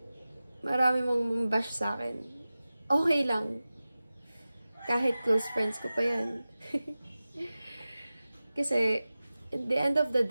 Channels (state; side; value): inverted; both; correlation -0.96